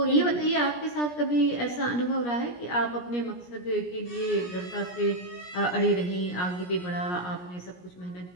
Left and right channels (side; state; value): right; late; 17 ms